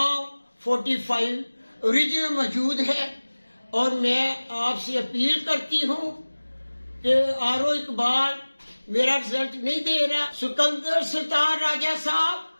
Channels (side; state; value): both; inverted; correlation -1.00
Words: 45 اوریجنل موجود ہے اور میں آپ سے اپیل کرتی ہوں کہ آر او اقبال میرا رزلٹ نہیں دے رہا۔ سکندر سلطان راجہ صاحب،